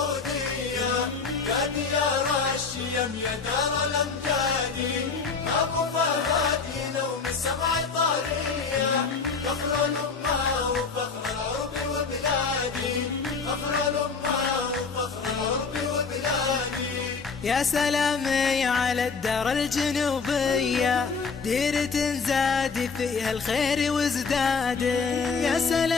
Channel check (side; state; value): right; quieter; 5.0 dB